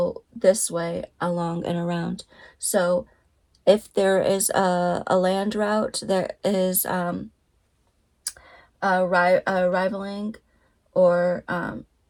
this way along and around. So if there is a land route that is rivaling or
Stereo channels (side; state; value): both; identical; correlation 1.00